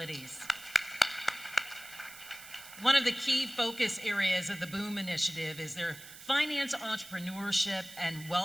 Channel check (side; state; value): right; noise; hiss, 16 dB below the sound